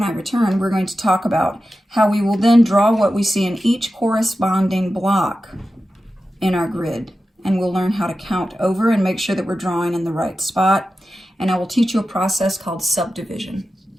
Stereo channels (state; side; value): normal; both; correlation 0.93